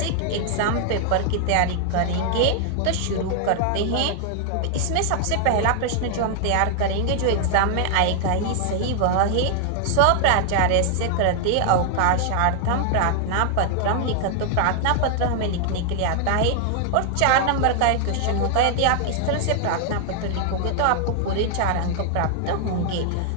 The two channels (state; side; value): different; both; correlation 0.00